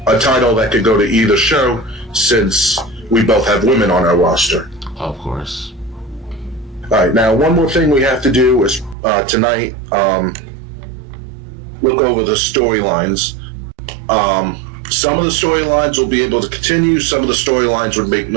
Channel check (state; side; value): drops out; left; at 9.0 s